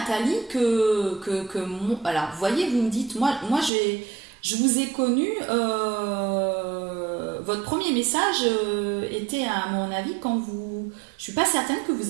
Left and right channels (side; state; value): left; drops out; at 3.7 s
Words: alors vous voyez, vous me dites, moi je vous ai connu, votre premier message était à mon avis quand je suis pas certaine que vous